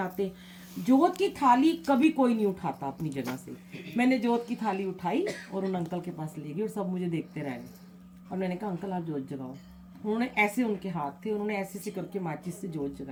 जोत की थाली कभी कोई नहीं उठाता अपनी जगह से। मैंने जोत की थाली उठाई और उन अंकल के पास ले गई और सब मुझे देखते रहे। और मैंने कहा अंकल आप जोत जगाओ। उन्होंने ऐसे, उनके हाथ थे, उन्होंने ऐसे ऐसे करके माचिस से जोत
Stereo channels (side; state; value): both; identical; correlation 1.00